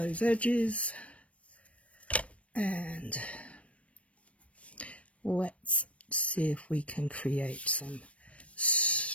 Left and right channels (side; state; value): right; late; 0.063 ms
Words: edges. And let's see if we can create some